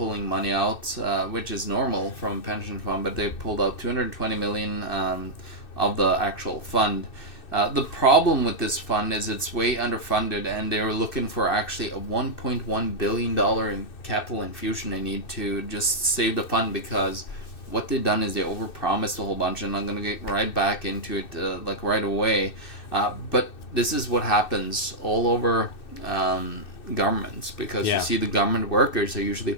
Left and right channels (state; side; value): late; right; 2.6 ms